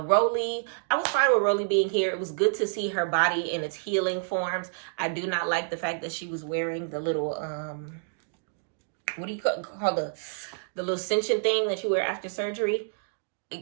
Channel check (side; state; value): left; silent; digital silence